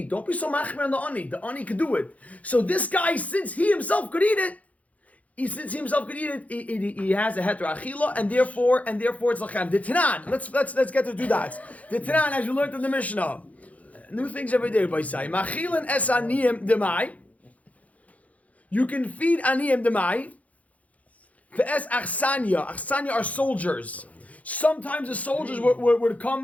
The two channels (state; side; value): late; right; 0.069 ms